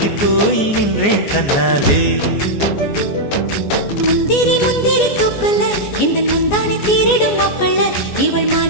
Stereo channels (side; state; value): right; late; 14 ms